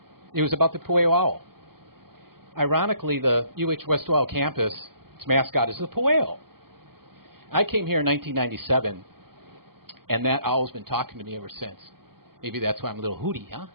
it was about the PUEO owl. Ironically, the UHWO campus, its mascot is the PUEO. I came here in 1997, and that owl's been talking to me ever since. Maybe that's why I'm a little hooty, huh?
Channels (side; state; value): left; late; 0.93 ms